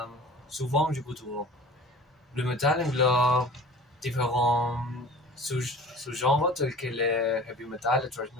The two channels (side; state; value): both; normal; correlation 0.41